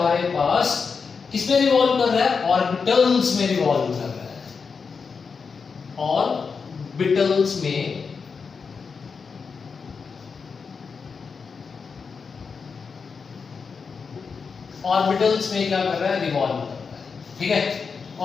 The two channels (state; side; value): quieter; right; 5.4 dB